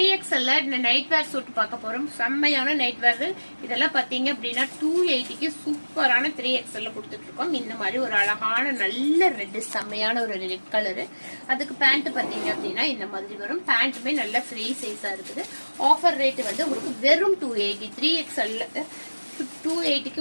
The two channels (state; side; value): inverted; both; correlation -1.00